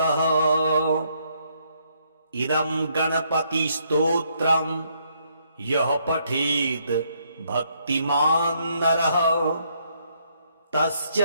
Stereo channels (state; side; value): inverted; both; correlation -0.72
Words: इदं गणपतिस्तोत्रं यः पठेद् भक्तिमान् नरः तस्य